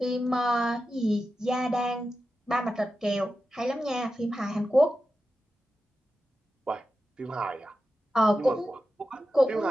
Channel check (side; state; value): both; normal; correlation 0.91